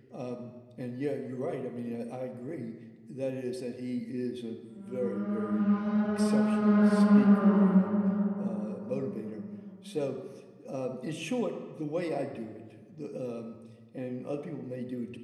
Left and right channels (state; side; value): identical; both; correlation 1.00